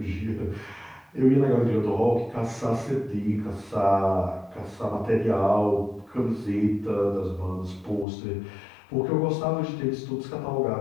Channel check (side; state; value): right; drops out; at 8.1 s